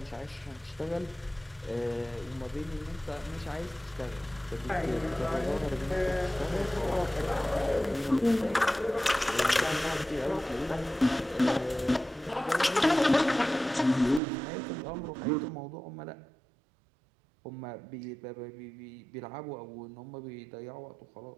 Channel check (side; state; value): left; drops out; at 14.2 s